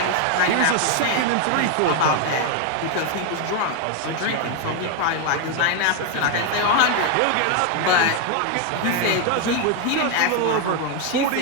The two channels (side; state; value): both; different; correlation 0.01